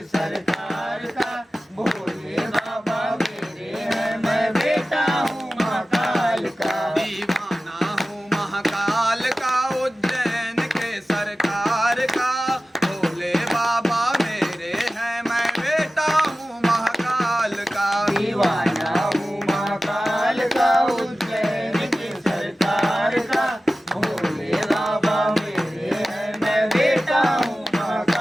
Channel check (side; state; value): both; normal; correlation 0.96